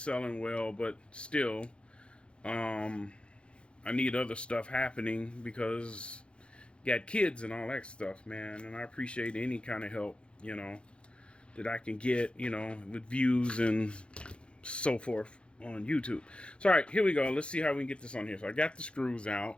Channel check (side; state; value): right; late; 0.057 ms